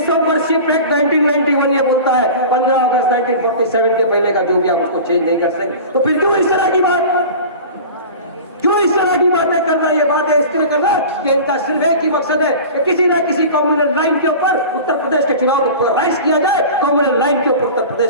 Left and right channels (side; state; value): both; inverted; correlation -0.36